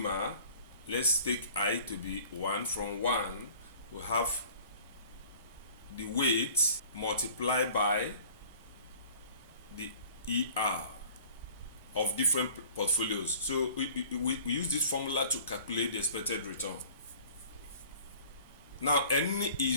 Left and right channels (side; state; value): both; inverted; correlation -0.48